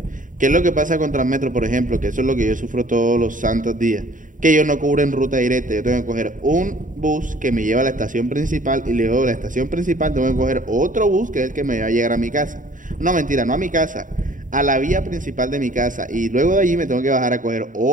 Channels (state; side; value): late; left; 0.38 ms